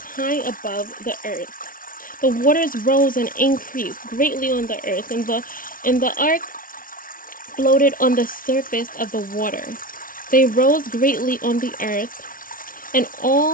high above the earth. The waters rose and increased greatly on the earth, and the ark floated on the surface of the water. They rose greatly on the earth, and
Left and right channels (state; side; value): late; right; 0.40 ms